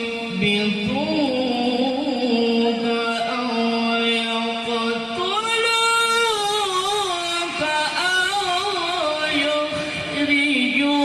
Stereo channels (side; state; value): both; identical; correlation 1.00